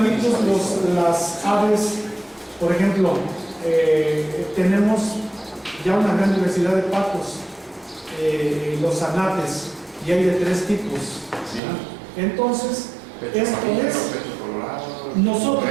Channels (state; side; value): drops out; left; at 11.6 s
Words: las aves, por ejemplo, tenemos ya una gran diversidad de patos, los anates, y hay de 3 tipos. ¿Sí? Entonces, esto es,